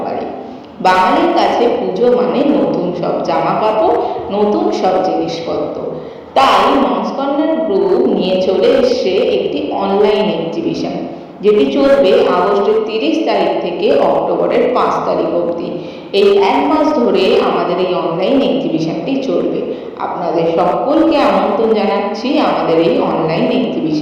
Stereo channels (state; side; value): identical; both; correlation 1.00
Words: বাড়ি। বাঙালির কাছে পুজো মানে নতুন সব জামা কাপড়, নতুন সব জিনিসপত্র। তাই মমস কর্নার গ্রুপ নিয়ে চলে এসছে একটি অনলাইন এক্সিবিশন, যেটি চলবে আগস্টের 30 তারিখ থেকে অক্টোবরের 5 তারিখ অবধি। এই এক মাস ধরে আমাদের এই অনলাইন এক্সিবিশনটি চলবে। আপনাদের সকলকে আমন্ত্রণ জানাচ্ছি আমাদের এই অনলাইন